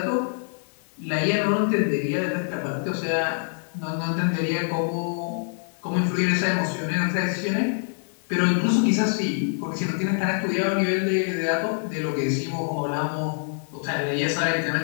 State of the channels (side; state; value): right; silent; digital silence